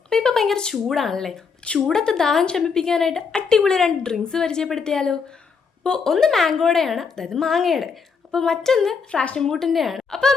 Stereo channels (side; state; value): right; quieter; 5.5 dB